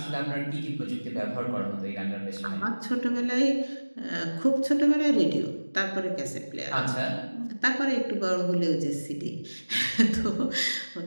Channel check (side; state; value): both; inverted; correlation -1.00